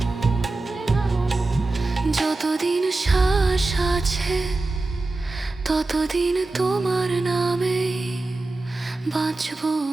যতদিন শ্বাস আছে, ততদিন তোমার নামে বাঁচব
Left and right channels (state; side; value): quieter; left; 3.3 dB